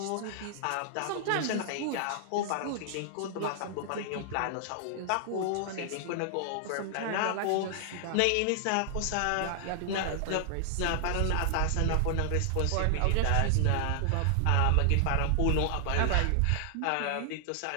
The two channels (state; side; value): different; both; correlation 0.00